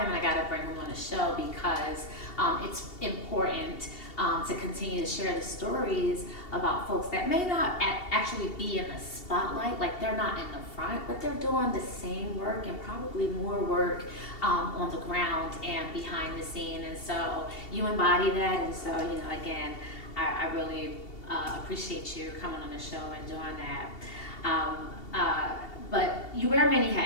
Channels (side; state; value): right; late; 2.7 ms